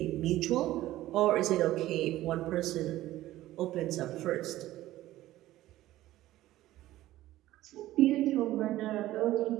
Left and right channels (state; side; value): quieter; left; 15.3 dB